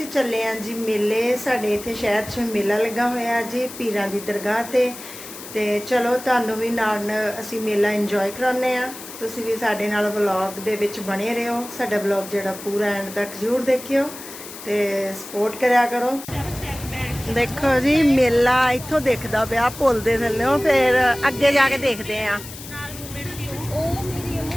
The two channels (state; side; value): noise; left; hiss, 13 dB below the sound